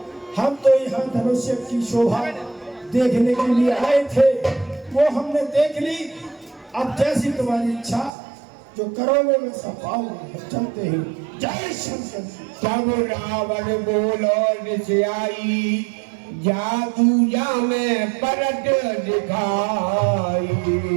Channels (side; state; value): left; drops out; at 8.1 s